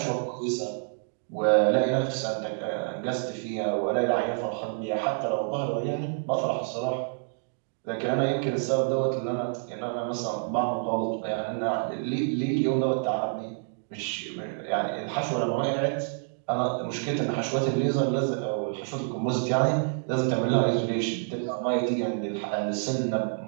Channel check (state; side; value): silent; left; digital silence